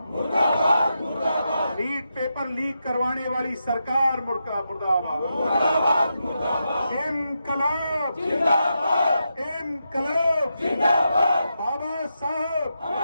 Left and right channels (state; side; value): inverted; both; correlation -0.86